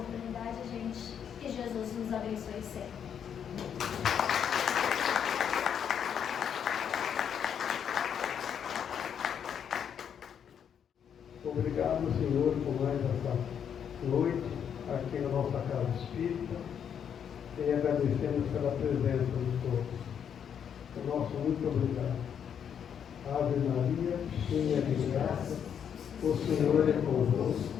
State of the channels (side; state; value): right; quieter; 8.2 dB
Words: gente. Que Jesus nos abençoe sempre. Obrigado, Senhor, por mais essa noite aqui na nossa casa espírita e agradecemos pela presença de todos. O nosso muito obrigado. Ave Maria, cheia de graça, o Senhor é